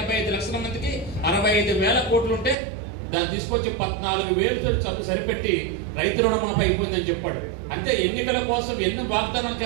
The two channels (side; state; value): left; drops out; at 2.6 s